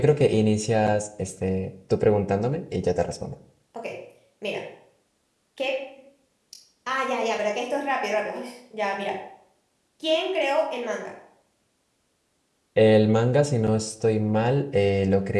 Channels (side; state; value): both; identical; correlation 1.00